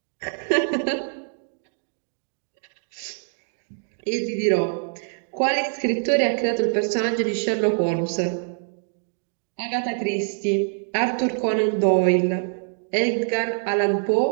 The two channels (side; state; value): left; silent; digital silence